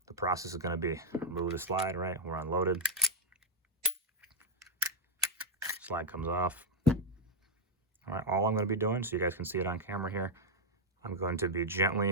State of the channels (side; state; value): both; normal; correlation -0.01